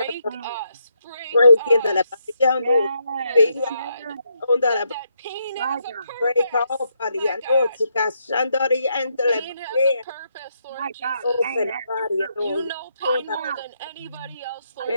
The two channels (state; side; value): inverted; both; correlation -0.78